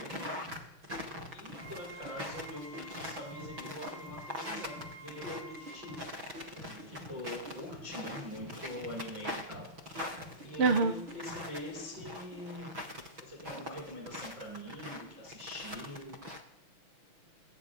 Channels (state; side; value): late; left; 6.1 ms